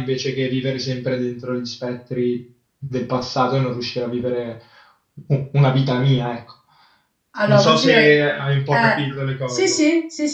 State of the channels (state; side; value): identical; both; correlation 1.00